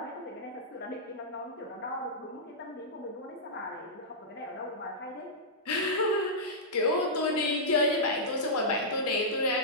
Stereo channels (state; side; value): normal; both; correlation -0.12